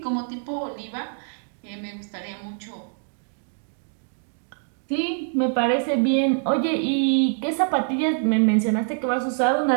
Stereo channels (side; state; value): left; silent; digital silence